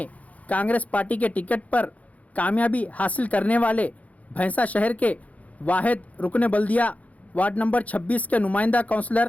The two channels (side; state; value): right; late; 0.070 ms